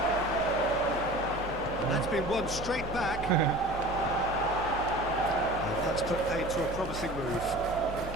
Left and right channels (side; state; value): both; normal; correlation 0.39